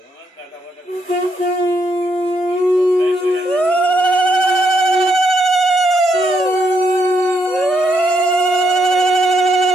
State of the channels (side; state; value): both; normal; correlation 0.77